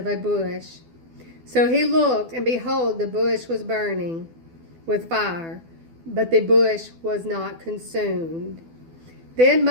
a bush. So he looked, and behold, the bush was burning with fire, but the bush was not consumed. Then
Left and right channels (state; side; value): late; left; 12 ms